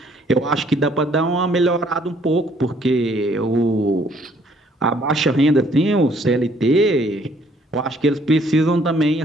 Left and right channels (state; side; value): normal; both; correlation 0.63